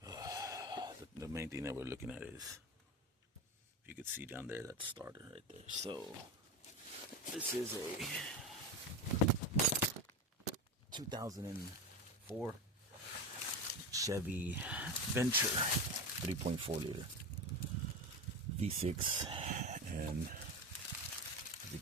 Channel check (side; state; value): both; normal; correlation 0.22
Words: the main thing that we're looking at is, if you could see down there, that starter right there. So this is a 2004 Chevy Venture 3.4 liter V6, and as you